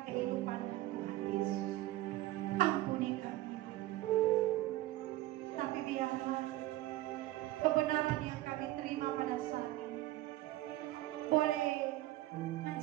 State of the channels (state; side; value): quieter; left; 16.4 dB